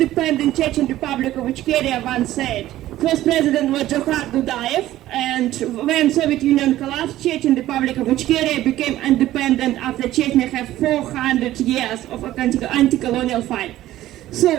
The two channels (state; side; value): quieter; left; 14.5 dB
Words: Chechen Republic of Ichkeria once said. First president was Johar Dudayev, and when Soviet Union collapsed, Chechen Republic of Ichkeria became independent after Chechnya had 400 years of anti-colonial fight.